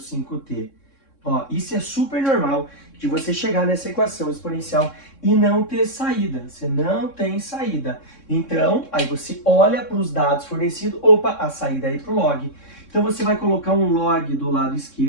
Ó, isso é super normal de você chegar nessa equação exponencial e não ter saída. Você não tem saída. Então, aí você olha para os dados fornecidos, opa, a saída é ir para o log. Então você vai colocar um log do lado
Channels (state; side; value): late; right; 3.6 ms